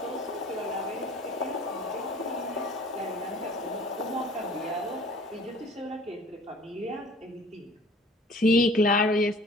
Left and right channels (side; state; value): both; normal; correlation 0.49